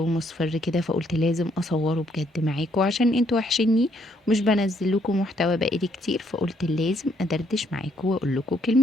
مصفر كده، فقلت لازم اصوره بجد معاكم عشان انتوا وحشني. مش بنزل لكم محتوى بقالي كتير، فقلت لازم ادردش معاكم واقول لكم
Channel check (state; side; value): normal; both; correlation 0.70